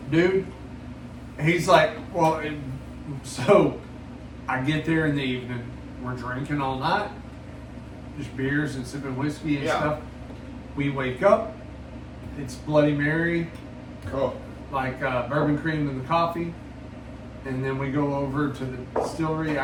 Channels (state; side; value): identical; both; correlation 1.00